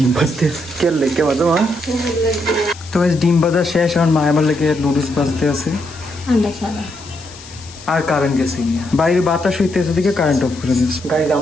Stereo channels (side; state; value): left; noise; hiss, 19 dB below the sound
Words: ভাজতে কে লেগে বাজো মা। তো গাইস ডিম ভাজা শেষ, এখন মা আমার লেগে নুডলস ভাজতে আছে। আন্ডা ছাড়া আর কারেন্ট গেছে গিয়ে, বাইরে বাতাস হইতেছে দিকে কারেন্ট অফ করে দিয়েছে। গাইজ